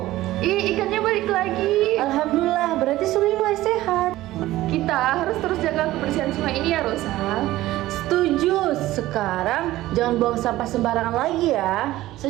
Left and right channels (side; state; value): left; quieter; 16.1 dB